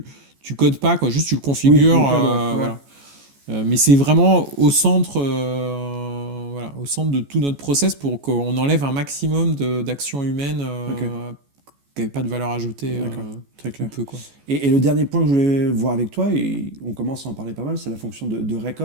codes pas, quoi, juste tu le configures, Oui, low code, ouais. voilà. Mais c'est vraiment au centre, au centre de tout notre process pour qu'on enlève un maximum d'actions humaines qui n'avaient pas de valeur ajoutée. D'accord. Très clair. Un peu, quoi. Et le dernier point que je voulais voir avec toi, et on commence à en parler pas mal, c'est la fonction de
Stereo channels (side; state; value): left; late; 14 ms